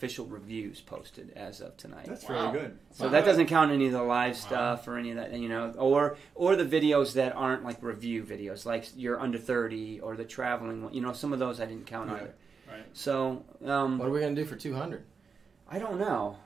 reviews posted as of tonight. That's really good. So that doesn't count any of the live stuff or any of that, or the videos that aren't like review videos, like you're under 30 or the traveling one. Some of those I didn't count either. Right. So what are we going to do for 200? I don't know.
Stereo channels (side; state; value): left; quieter; 5.4 dB